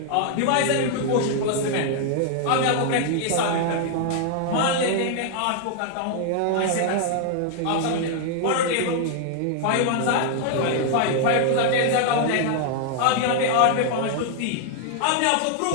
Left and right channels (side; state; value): both; different; correlation 0.00